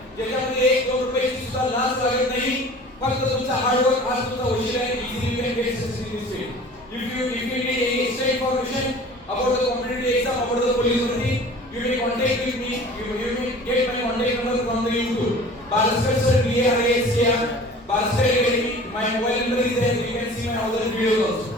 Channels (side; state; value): both; normal; correlation 0.44